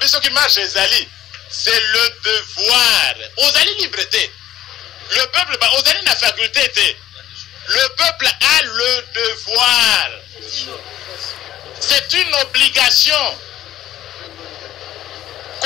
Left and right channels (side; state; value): right; quieter; 12.9 dB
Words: Ce qui marche, c'est le devoir. Vous allez liberté. Le peuple, vous allez la faculté. Le peuple a le devoir. C'est une obligation.